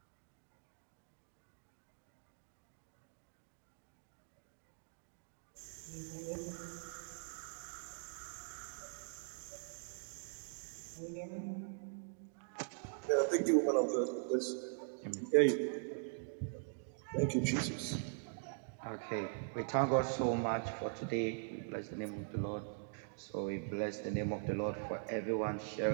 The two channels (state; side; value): silent; left; digital silence